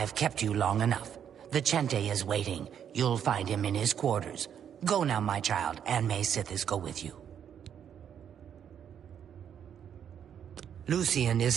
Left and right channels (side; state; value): left; quieter; 8.7 dB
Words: kept you long enough. Vicente is waiting. You'll find him in his quarters. Go now, my child, and may Sithis go with you. Lucien